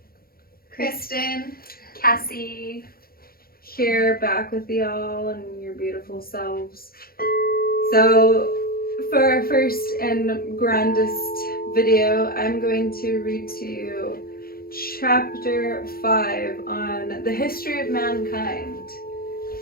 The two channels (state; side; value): late; right; 0.43 ms